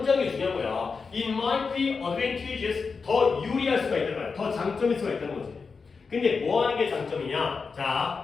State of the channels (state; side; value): quieter; right; 5.0 dB